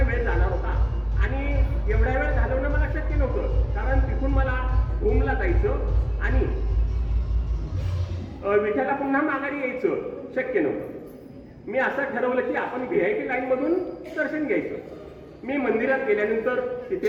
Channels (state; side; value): identical; both; correlation 1.00